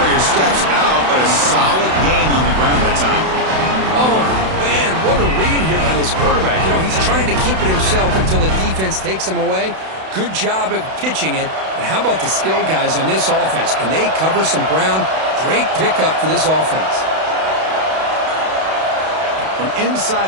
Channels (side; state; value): left; late; 32 ms